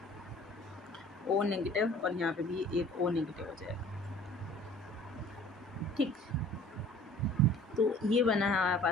O negative, और यहाँ पे भी एक O नेगेटिव हो जाएगा। ठीक, तो ये बना है हमारे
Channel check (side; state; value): both; normal; correlation 0.49